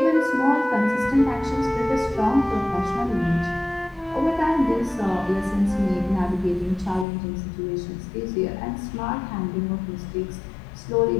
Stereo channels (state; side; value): drops out; right; at 7.1 s